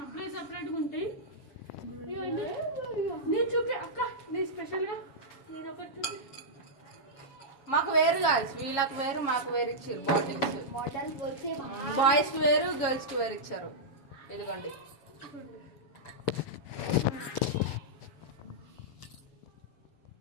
సపరేట్గా ఉంటాయి. ఇవ్వండి నేను చూపి అక్క, నీ స్పెషల్గా నేను ఒకటి చూపి. మాకు వేరు కాదు, వీళ్ళకి వేరు మాకు వేరు ఇచ్చారు బాటిల్స్. బాయ్స్ కి వేరు, గర్ల్స్ కి వేరు ఇచ్చారు. ఇదిగోండి.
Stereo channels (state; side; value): late; right; 7.2 ms